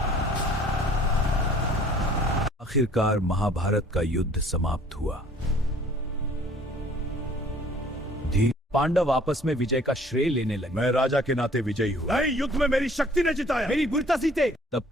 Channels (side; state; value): both; normal; correlation 0.54